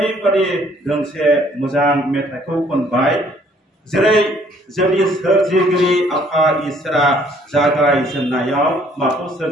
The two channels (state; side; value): normal; both; correlation 0.61